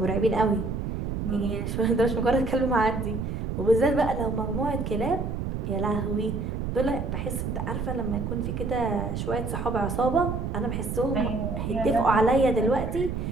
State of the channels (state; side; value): noise; right; rumble, 3 dB below the sound